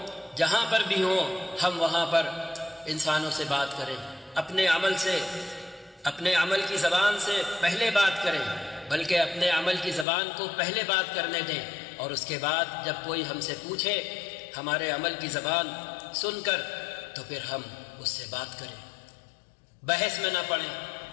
جہاں پر بھی ہوں، ہم وہاں پر انسانوں سے بات کریں، اپنے عمل سے، اپنے عمل کی زبان سے پہلے بات کریں، بلکہ اپنے عمل کی زبان کو پہلے بات کرنے دیں، اور اس کے بعد جب کوئی ہم سے پوچھے ہمارے عمل کی زبان سن کر تو پھر ہم اس سے بات کریں، بحث میں نہ پڑیں،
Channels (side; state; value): right; drops out; at 10.1 s